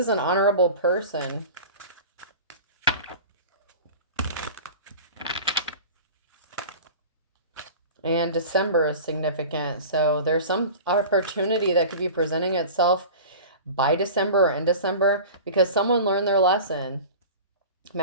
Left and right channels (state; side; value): inverted; both; correlation -0.36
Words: an honorable person. And December is significant. So there's some opportunity that could be presenting itself by December or in December, because someone learned their lesson.